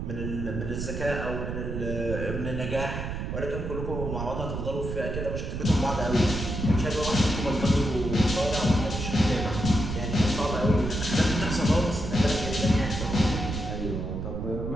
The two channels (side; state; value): right; noise; rumble, 4 dB below the sound